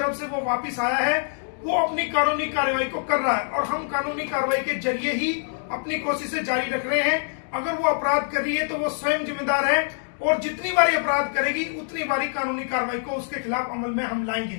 से वो वापिस आया है, वो अपनी कानूनी कार्रवाई को कर रहा है और हम कानूनी कार्रवाई के जरिए ही अपनी कोशिशें जारी रख रहे हैं। अगर वो अपराध कर रही है तो वो स्वयं जिम्मेदार है और जितनी बारी अपराध करेगी उतनी बारी कानूनी कार्रवाई को उसके खिलाफ अमल में हम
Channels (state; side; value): silent; right; digital silence